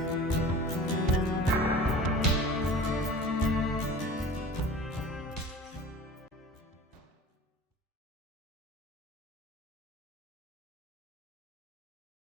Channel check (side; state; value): both; normal; correlation 0.40